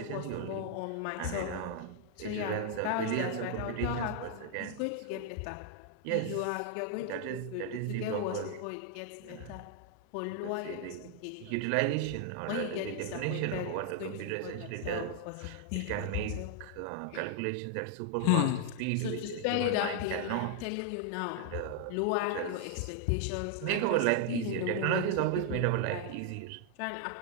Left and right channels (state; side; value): different; both; correlation 0.00